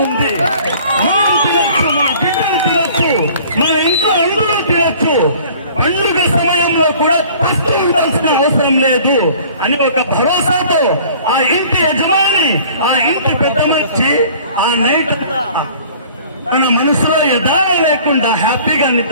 ఉంది. మనం తినొచ్చు, మన బిడ్డలు తినొచ్చు, మన ఇంట్లో అందరూ తినొచ్చు. పండుగ సమయంలో కూడా పస్తూ ఉండాల్సిన అవసరం లేదు అని ఒక భరోసాతో ఆ ఇంటి యజమాని, ఆ ఇంటి పెద్ద మనిషి ఆ నైట్ తన మనసులో యథార్థ లేకుండా హ్యాపీగా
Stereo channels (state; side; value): inverted; both; correlation -0.50